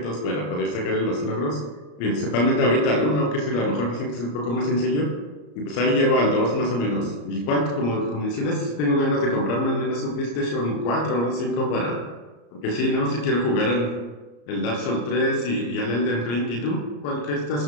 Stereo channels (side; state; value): right; late; 34 ms